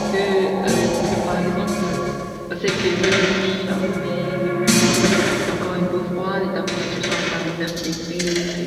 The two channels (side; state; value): both; identical; correlation 1.00